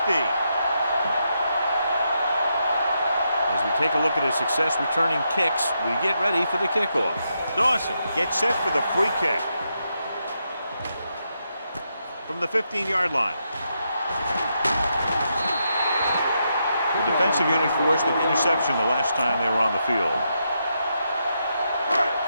As we take a look at his success returning kicks, we get ready for the kickoff. Dawson gets set for the free kick. From the 15-yard line. The defensive unit forced an interception the last time they were on the field.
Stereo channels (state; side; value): inverted; both; correlation -0.82